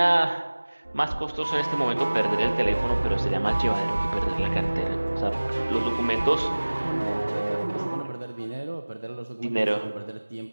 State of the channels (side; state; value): both; inverted; correlation -1.00